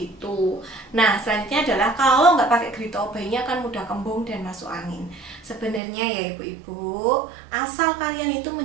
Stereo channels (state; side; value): drops out; left; at 5.8 s